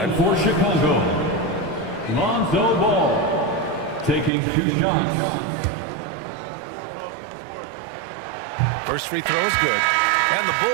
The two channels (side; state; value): left; drops out; at 4.3 s